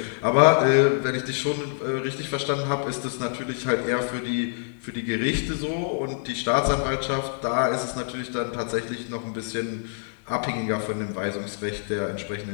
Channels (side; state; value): right; silent; digital silence